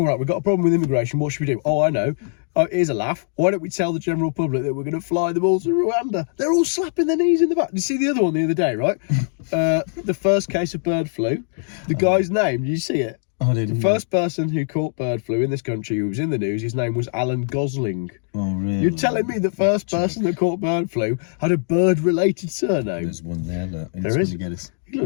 right, we've got a problem with immigration. What should we do? Oh, I know. Oh, here's a laugh. Why don't we tell the general public that we're going to fly them all to Rwanda? They're all slapping their knees in the back. Did you see the other one the other day, right? The first case of bird flu. The guy's name, did you see it? I didn't. The first person who caught bird flu in this country who was in the news, his name was Alan Gosling. Oh, really? You're telling me the first person that caught bird flu had a bird-related surname? There's one there. Look. There is. Get us. He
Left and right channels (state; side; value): silent; right; digital silence